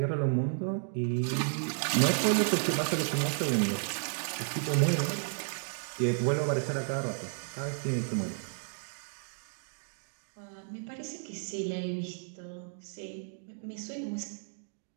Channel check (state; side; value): silent; left; digital silence